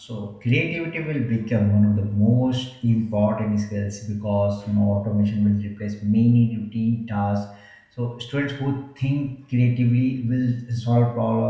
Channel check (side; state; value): both; identical; correlation 1.00